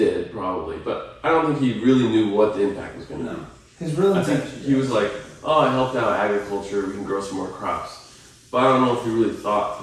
probably, but I don't think he really knew what the impact was going to be. His real I think intention. he was like, oh, I helped out agriculture, we can grow some more crops. But I don't know if he really thought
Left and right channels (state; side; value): identical; both; correlation 1.00